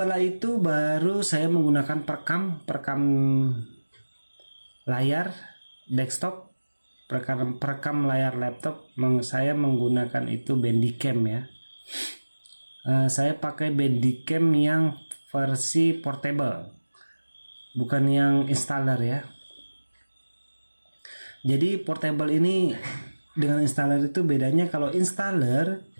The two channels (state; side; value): inverted; both; correlation -1.00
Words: itu baru saya menggunakan perekam layar desktop, perekam layar laptop. Saya menggunakan itu Bandicam ya. Saya pakai Bandicam yang versi portable, bukan yang installer ya. Jadi portable ini dengan installer itu bedanya, kalau installer